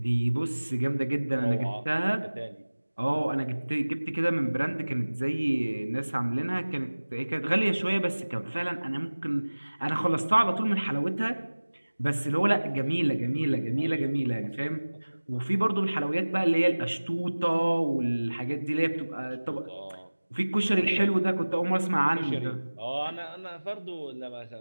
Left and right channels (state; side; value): inverted; both; correlation -1.00